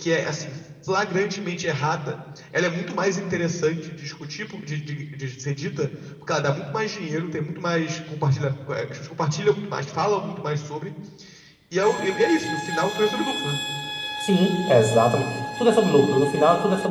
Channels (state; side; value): identical; both; correlation 1.00